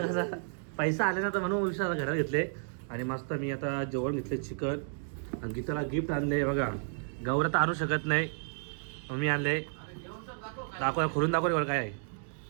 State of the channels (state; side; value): silent; left; digital silence